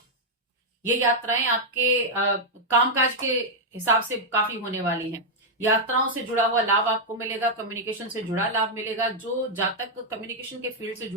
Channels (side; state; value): both; normal; correlation -0.03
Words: ये यात्राएं आपके कामकाज के हिसाब से काफी होने वाली हैं। यात्राओं से जुड़ा हुआ लाभ आपको मिलेगा, कम्युनिकेशन से जुड़ा लाभ मिलेगा। जो जातक कम्युनिकेशन के फील्ड से